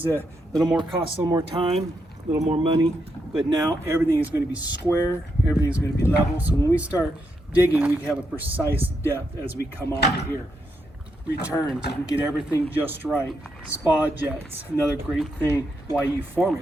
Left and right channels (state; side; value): normal; both; correlation 0.81